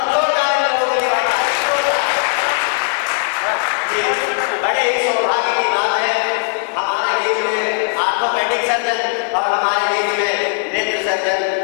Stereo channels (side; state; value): right; silent; digital silence